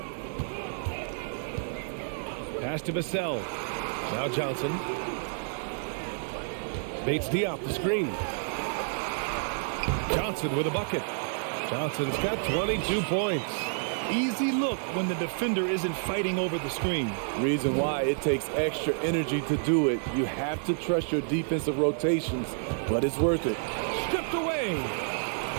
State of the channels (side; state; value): left; silent; digital silence